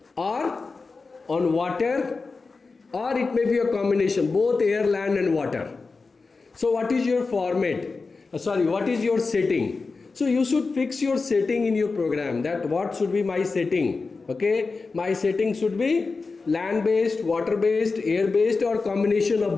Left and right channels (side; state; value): right; quieter; 4.2 dB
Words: or on water, or it may be a combination, both air, land and water. So what is your format? What is your setting? So you should fix your setting in your program, that what should be my setting. Okay, my setting should be land-based, water-based, air-based, or combination of